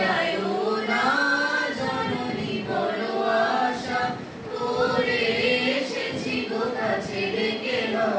না জননী বড় আশা করে এসেছি গো কাছে রেখে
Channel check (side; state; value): both; identical; correlation 1.00